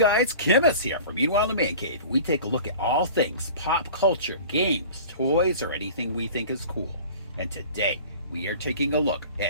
Kimmus here from Meanwhile in the Man Cave. We take a look at all things pop culture, games, toys, or anything we think is cool. And today, we are taking a look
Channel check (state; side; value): inverted; both; correlation -0.41